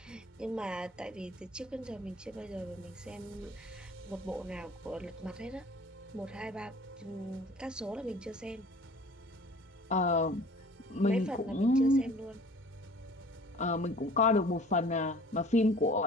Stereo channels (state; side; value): normal; both; correlation 0.49